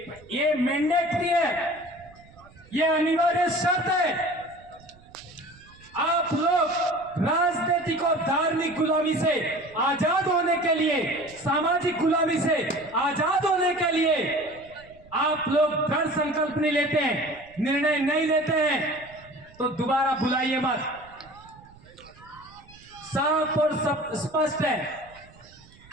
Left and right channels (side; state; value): right; noise; rumble, 25 dB below the sound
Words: मैंडेटरी है, ये अनिवार्य शर्त है। आप लोग राजनीतिक और धार्मिक गुलामी से आजाद होने के लिए, सामाजिक गुलामी से आजाद होने के लिए आप लोग दृढ़ संकल्प नहीं लेते हैं, निर्णय नहीं लेते हैं तो दोबारा बुलाइए मत। साफ और सब स्पष्ट है।